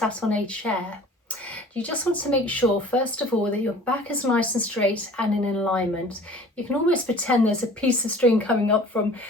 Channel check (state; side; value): normal; both; correlation 0.46